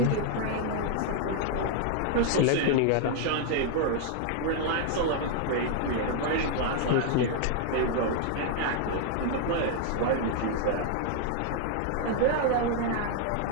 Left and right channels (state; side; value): different; both; correlation 0.00